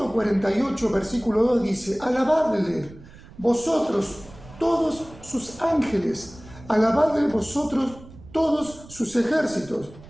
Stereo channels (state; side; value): noise; right; rumble, 19 dB below the sound